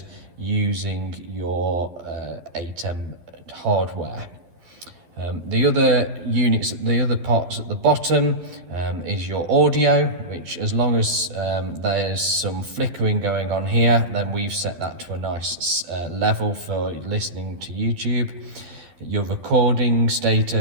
using your ATEM hardware. The other units, the other parts at the bottom is your audio, which as long as there's some flickering going on here, then we've set that to a nice level for listening to YouTube. Your recording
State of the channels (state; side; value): late; left; 12 ms